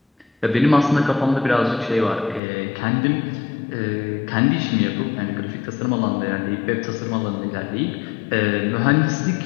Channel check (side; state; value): right; drops out; at 2.4 s